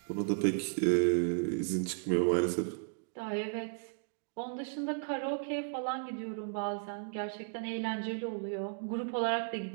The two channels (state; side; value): silent; left; digital silence